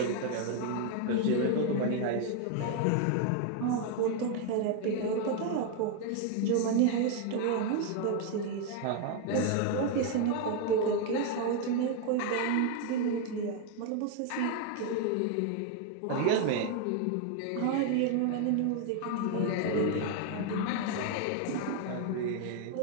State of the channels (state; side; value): different; both; correlation 0.01